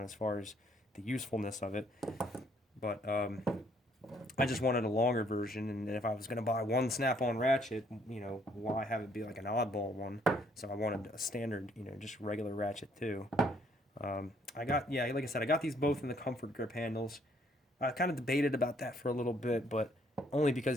as far as the usefulness of it. But I just wanted a longer version, and if I was going to buy one Snap-on ratchet, why have it be like an oddball one? So I wanted a standard, just regular ratchet too. Like I said, I got these both in the comfort grip handles. I kind of debated about that for a little bit, but only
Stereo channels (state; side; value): normal; both; correlation 0.66